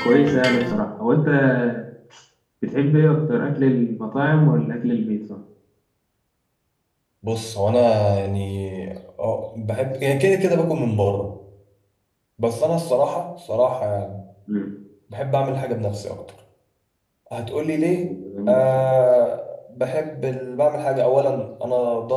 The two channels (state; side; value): identical; both; correlation 1.00